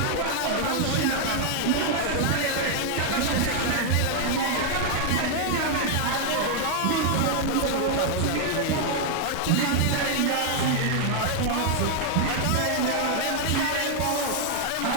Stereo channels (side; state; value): both; different; correlation 0.00